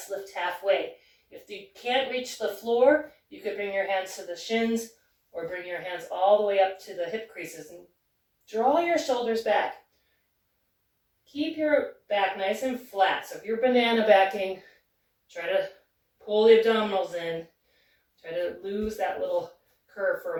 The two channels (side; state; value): both; identical; correlation 1.00